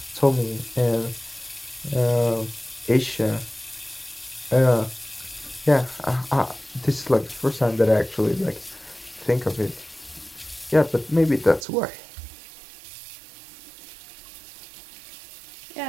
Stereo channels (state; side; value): drops out; left; at 11.7 s